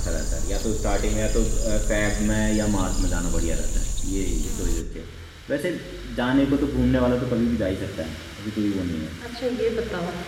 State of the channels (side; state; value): both; identical; correlation 1.00